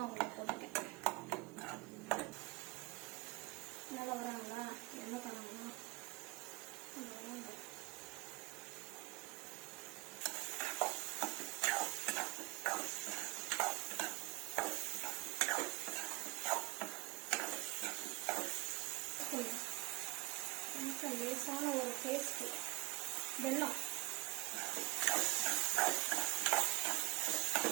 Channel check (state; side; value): quieter; left; 23.7 dB